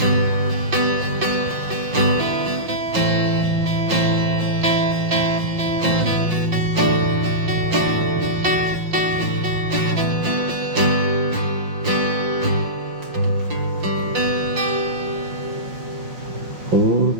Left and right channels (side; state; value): left; late; 5.7 ms